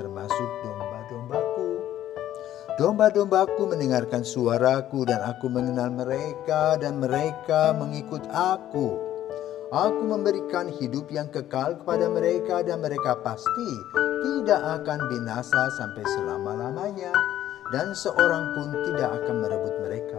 domba-dombaku. Domba-dombaku mendengarkan suaraku dan Aku mengenal mereka dan mereka mengikut Aku. Aku memberikan hidup yang kekal kepada mereka dan mereka pasti tidak akan binasa sampai selama-lamanya. Dan seorang pun tidak akan merebut mereka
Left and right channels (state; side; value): quieter; right; 12.4 dB